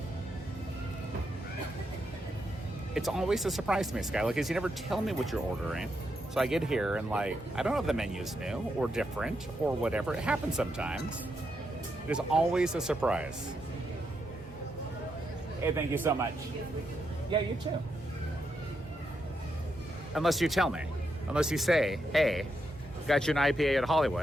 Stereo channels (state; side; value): normal; both; correlation 0.82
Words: It's always a surprise to me, Skyla, because you never tell me what you're ordering. So I get here and like, I don't know if the menu's new or different or whatever. It happens sometimes. There's always a surprise. Hey, thank you so much. Yeah, you too. Unless you tell me. Unless you say, hey, got you an IPA at